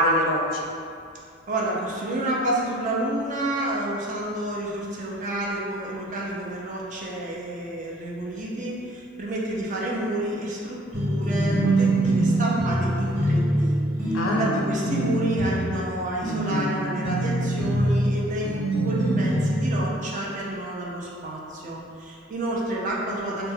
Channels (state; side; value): normal; both; correlation 0.58